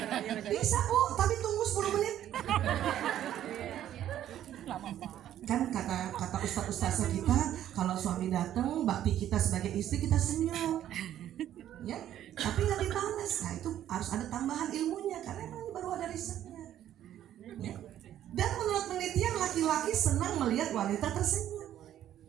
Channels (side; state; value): left; quieter; 11.5 dB